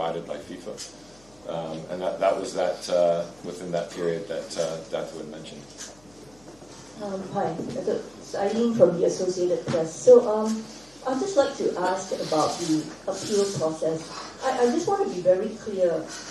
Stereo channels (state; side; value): noise; left; hum, 29 dB below the sound